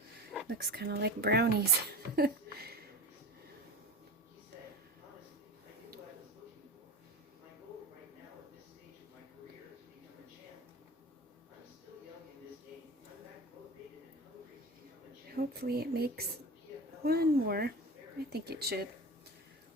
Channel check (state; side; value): normal; both; correlation 0.32